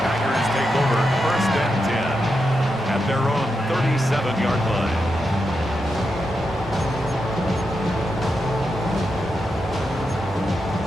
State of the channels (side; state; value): both; normal; correlation 0.86